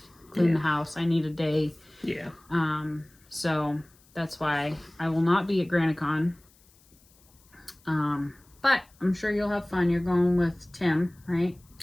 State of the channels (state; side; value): noise; left; hiss, 30 dB below the sound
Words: clean the house. I need a day. Yeah. So that's why I will not be at Granite Con. But I'm sure you'll have fun. You're going with Tim, right?